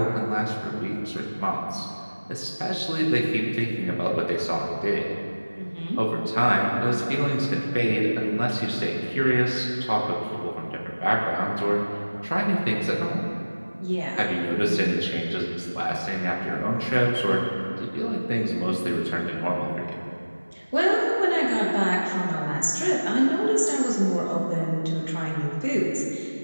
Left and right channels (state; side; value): inverted; both; correlation -1.00